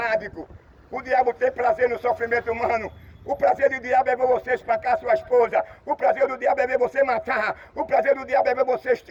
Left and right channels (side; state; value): both; identical; correlation 1.00